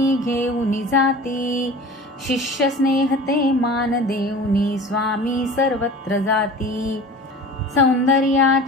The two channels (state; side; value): normal; both; correlation 0.38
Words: घेऊन जाती शिष्य स्नेह ते मान देऊनी स्वामी सर्वत्र जाती